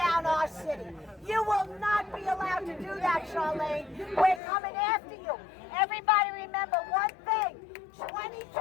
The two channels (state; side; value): drops out; right; at 4.4 s